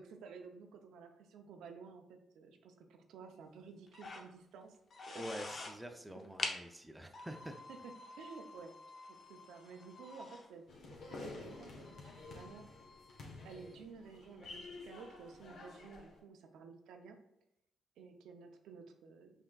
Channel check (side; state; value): both; normal; correlation 0.77